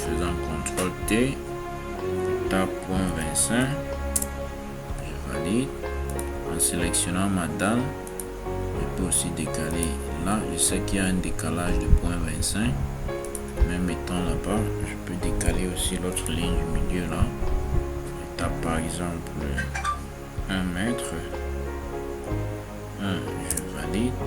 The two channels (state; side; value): identical; both; correlation 1.00